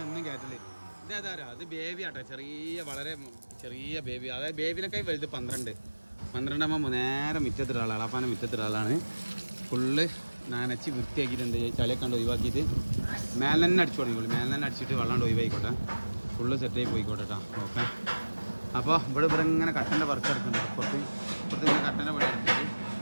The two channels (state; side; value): inverted; both; correlation -1.00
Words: എന്നും കയറ്റല് ഇതേതാ അത് ബേബി ആട്ടോ വളരെ ചെറിയ ബേബി അതായത് ബേബിനൊക്കെ വലുത് 12 നേരെ മുറ്റത്തിട്ട ആളാണ് അളാപ്പാനെ മുറ്റത്തിട്ട ആളാണ് ഫുള്ള് നനച്ച് വൃത്തിയാക്കിയിട്ടുണ്ട് ചളിയൊക്കെ കണ്ട് ഒഴിവാക്കിയിട്ട് മേലെ തന്നെ അടിച്ചു തുടങ്ങിക്കോളൂ മേലെ തന്നെ അടിച്ചിട്ട് വെള്ളം ഒഴിവായിക്കോട്ടെ ഫുള്ള് സെറ്റായി പോയിക്കോട്ടെ കേട്ടോ ഓക്കെ അപ്പോൾ ഇവിടെ ഇങ്ങനെ കട്ടൻ്റെ വർക്ക് എടുക്കുന്നുണ്ട് ഇപ്പുറത്ത് ഇങ്ങനെ കട്ടൻ്റെ പണി എടുത്തിട്ട്